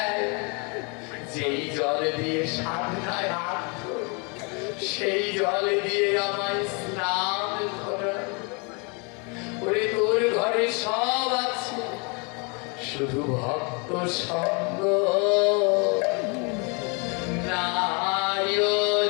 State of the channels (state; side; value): quieter; right; 33.3 dB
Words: যেই জল দিয়ে সাধনায় হাত ধরে, সেই জল দিয়ে আমায় স্নান করায়। ওরে, তোর ঘরে সব আছে, শুধু ভক্ত সঙ্গ নাই